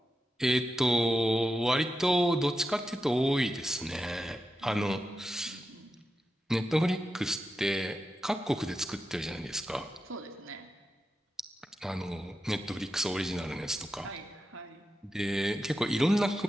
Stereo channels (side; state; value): both; normal; correlation 0.89